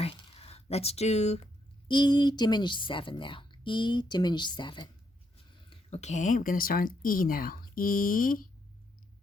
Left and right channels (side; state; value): both; normal; correlation 0.76